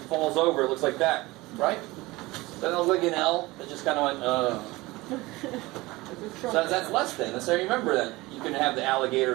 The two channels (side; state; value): left; quieter; 20.8 dB